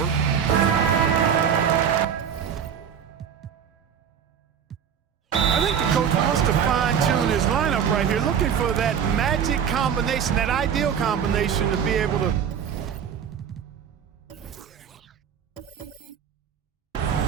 I think the coach wants to fine-tune his lineup right here, looking for that magic combination, that ideal combination to be able to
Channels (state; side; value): quieter; left; 8.0 dB